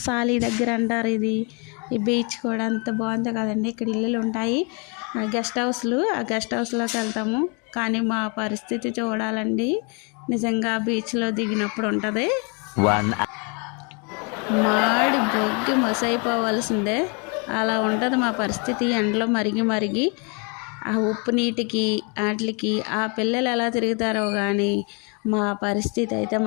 సాలీ దగ్గర అంటారు ఇది. ఈ బీచ్ కూడా అంత బాగుందో కదండి. ఇక్కడ ఇల్లులు ఉంటాయి, గెస్ట్ హౌస్లు. ఆ గెస్ట్ హౌస్లోకి వెళ్తాము. కానీ మా పరిస్థితి చూడాలండి, నిజంగా బీచ్లో దిగినప్పుడు ఉంటుంది. మాడి బొగ్గి మొసైపోవాల్సిందే, అలా ఉంటుంది మా పరిస్థితి. ఎండలో మరిగి మరిగి ఆ ఉప్పు నీటికి వాటికి ఆ పిల్లలు ఎలా తిరుగుతారో కానీ మా పరిస్థితి అయితే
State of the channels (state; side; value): quieter; right; 34.0 dB